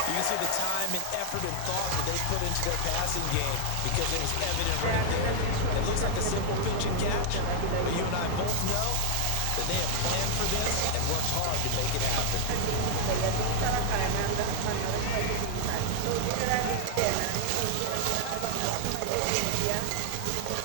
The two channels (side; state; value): both; different; correlation 0.00